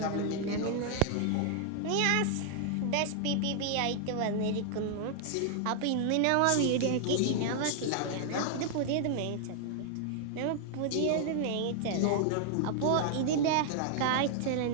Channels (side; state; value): both; different; correlation 0.00